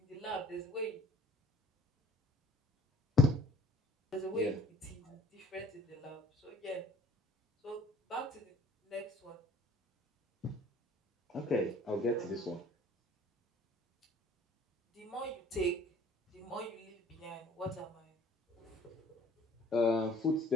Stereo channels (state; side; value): normal; both; correlation 0.53